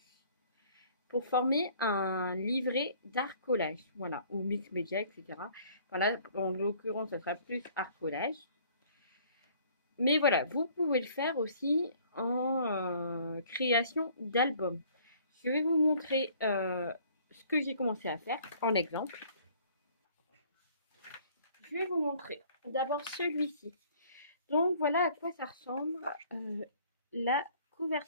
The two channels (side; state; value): both; inverted; correlation -0.56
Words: pour former un livret d'art collage, voilà, ou mix média, etc. Voilà, en l'occurrence, ça sera plus art collage. Mais voilà, vous pouvez le faire aussi en création d'albums. Je vais vous montrer ce que j'ai commencé à faire en exemple. Je vais vous montrer d'abord celui-ci. Donc voilà à quoi ça ressemble la